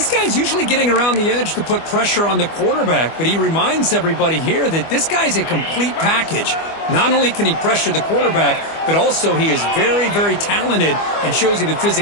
guy's usually getting around the edge to put pressure on the quarterback, but he reminds everybody here that this guy's a complete package. Not only can he pressure the quarterback, but also he is very, very talented and shows you the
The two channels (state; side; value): late; right; 25 ms